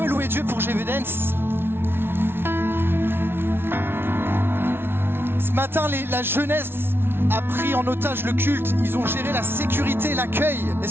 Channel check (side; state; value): left; late; 0.11 ms